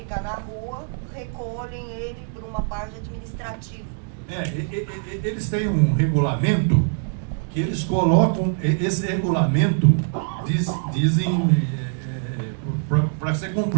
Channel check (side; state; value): left; silent; 57 dB below the other